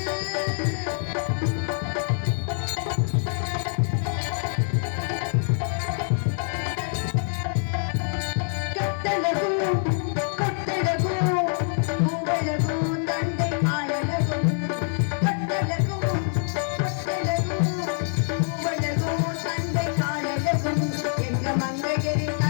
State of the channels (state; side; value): silent; right; digital silence